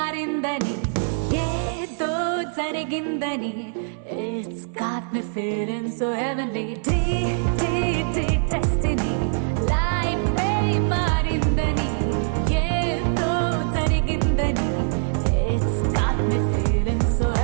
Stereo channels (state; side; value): silent; left; digital silence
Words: ఏదో జరిగిందని It's got me feeling so heavenly destiny లైఫే మారిందని ఏదో జరిగిందని It's got me feeling so